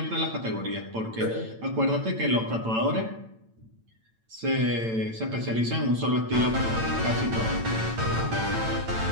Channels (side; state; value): left; late; 8.9 ms